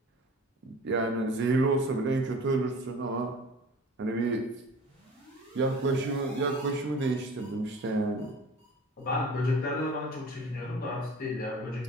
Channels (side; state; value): both; normal; correlation 0.43